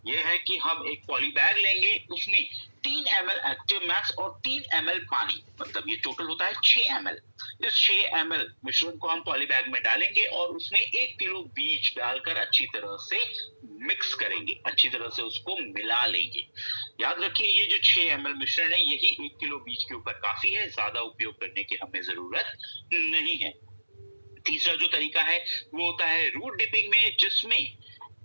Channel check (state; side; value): inverted; both; correlation -1.00